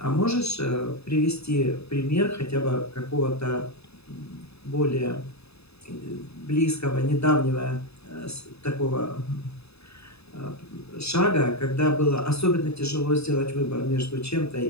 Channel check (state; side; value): late; right; 0.79 ms